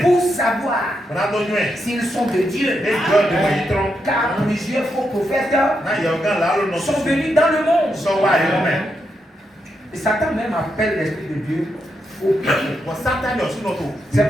pour savoir s'ils sont de Dieu. Car plusieurs faux prophètes sont venus dans le monde. Et Satan même appelle l'esprit de Dieu faux prophète. C'est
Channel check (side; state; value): both; normal; correlation 0.83